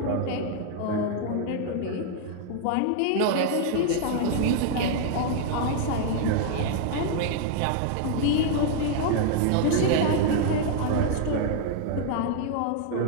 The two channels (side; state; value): both; different; correlation 0.00